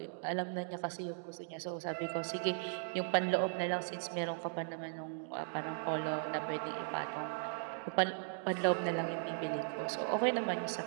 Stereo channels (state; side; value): silent; left; digital silence